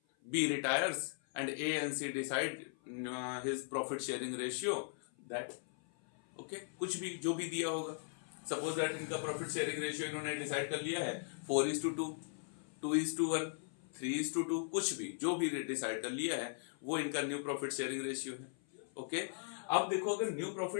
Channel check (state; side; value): silent; right; 52 dB below the other